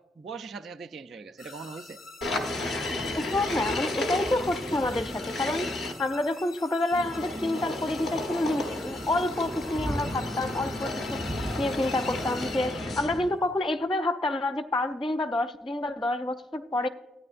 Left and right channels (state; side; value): normal; both; correlation 0.76